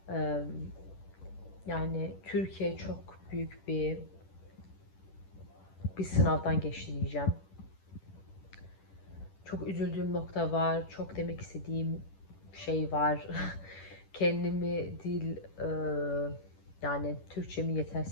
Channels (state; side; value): late; right; 10 ms